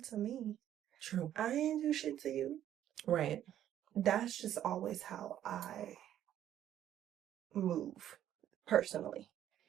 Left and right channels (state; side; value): quieter; left; 11.3 dB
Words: to me. true. I ain't do shit to you. Right. That's just always how I move personally.